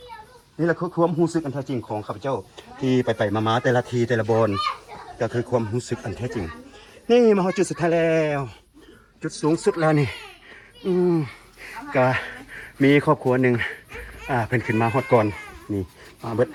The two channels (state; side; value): identical; both; correlation 1.00